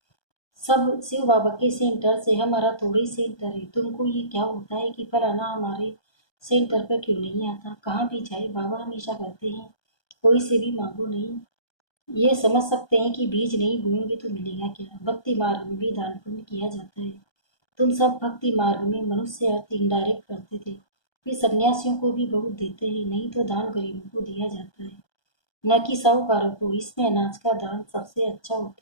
सब शिव बाबा के सेंटर से, हमारा थोड़ा ही सेंटर है। तुमको ये क्या होता है कि फलाना हमारे सेंटर पर क्यों नहीं आता। कहाँ भी जाए बाबा हमेशा कहते हैं कोई से भी मांगो नहीं। ये समझ सकते हैं कि बीज नहीं बोएंगे तो मिलेगा क्या। भक्ति मार्ग में भी दान पुण्य किया जाता है। तुम सब भक्ति मार्ग में मनुष्य अर्थ इनडायरेक्ट करते थे, फिर सन्यासियों को भी बहुत देते हैं, नहीं तो दान गरीबों को दिया जाता है, न कि साहूकारों को। इसमें अनाज का दान सबसे अच्छा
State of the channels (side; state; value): right; late; 1.2 ms